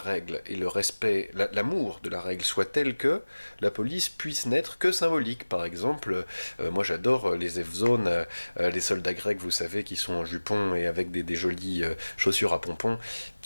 et l'amour de la règle soit tel que la police puisse n'être que symbolique. Par exemple, moi j'adore les Evzones, les soldats grecs, vous savez, qui sont en jupon et avec des jolies chaussures à pompons,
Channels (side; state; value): both; inverted; correlation -1.00